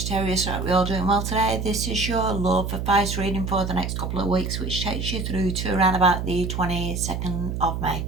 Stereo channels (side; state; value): right; noise; hum, 3 dB below the sound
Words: Right, we all doing well today. This is your love advice reading for the next couple of weeks, which takes you through to around about the 22nd of May.